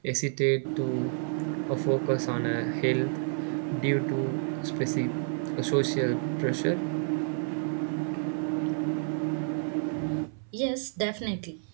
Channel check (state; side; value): silent; left; 58 dB below the other